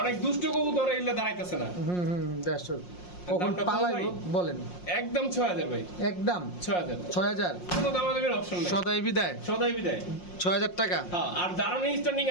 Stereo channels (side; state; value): right; late; 5.6 ms